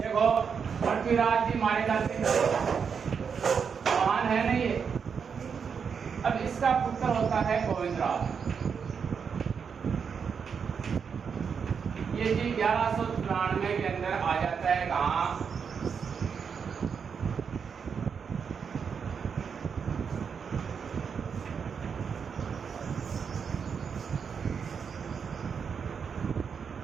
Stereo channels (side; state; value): left; quieter; 6.4 dB